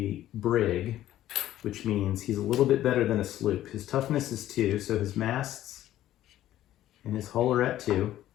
brig, which means he's a little bit better than a sloop. His toughness is 2, so his masts and his hull are at 2.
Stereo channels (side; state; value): right; quieter; 13.3 dB